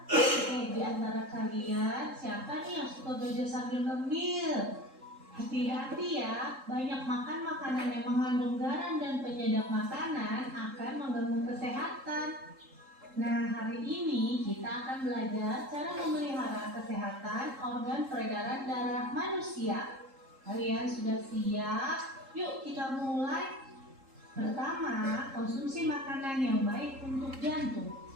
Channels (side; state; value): left; late; 3.7 ms